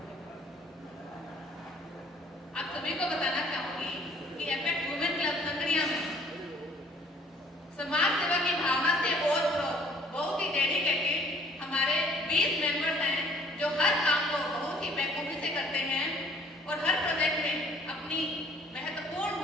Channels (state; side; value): normal; both; correlation 0.57